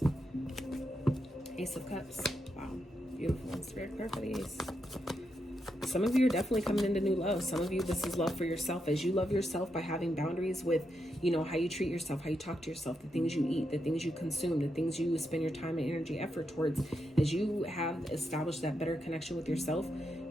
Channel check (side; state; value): both; normal; correlation 0.83